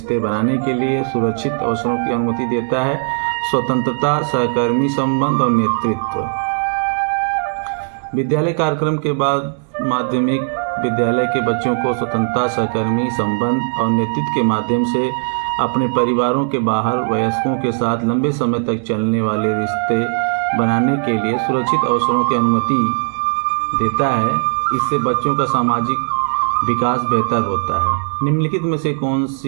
बनाने के लिए सुरक्षित अवसरों की अनुमति देता है? स्वतंत्रता, सहकर्मी संबंध और नेतृत्व। विद्यालय कार्यक्रम के बाद माध्यमिक विद्यालय के बच्चों को स्वतंत्रता, सहकर्मी संबंध और नेतृत्व के माध्यम से अपने परिवारों के बाहर वयस्कों के साथ लंबे समय तक चलने वाले रिश्ते बनाने के लिए सुरक्षित अवसरों की अनुमति देता है। इससे बच्चों का सामाजिक विकास बेहतर होता है। निम्नलिखित में से कौन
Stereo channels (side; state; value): left; silent; digital silence